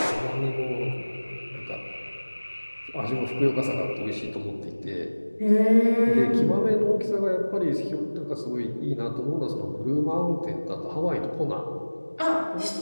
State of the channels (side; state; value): both; inverted; correlation -1.00